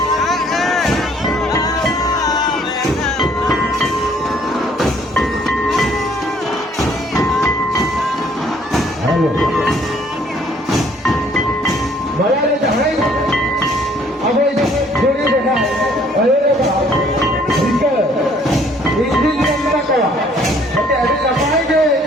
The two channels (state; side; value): normal; both; correlation 0.61